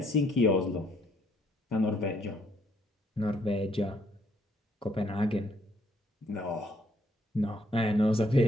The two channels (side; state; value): both; normal; correlation 0.69